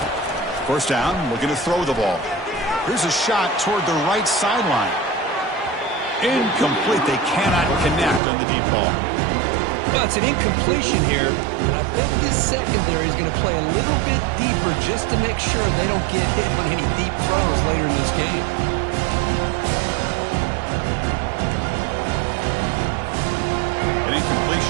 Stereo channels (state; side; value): drops out; left; at 8.2 s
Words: First down, looking to throw the ball. Here's a shot toward the right sideline. Incomplete. They cannot connect on the deep ball. Well, it's an incompletion here, but I bet this secondary is going to play a little bit deeper just to make sure they don't get hit on any deep throws later in this game. An